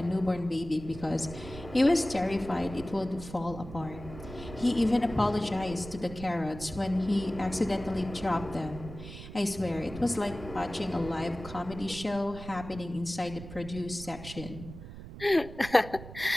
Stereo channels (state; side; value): noise; right; rumble, 13 dB below the sound